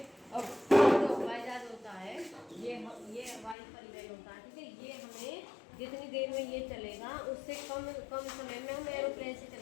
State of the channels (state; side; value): drops out; right; at 3.6 s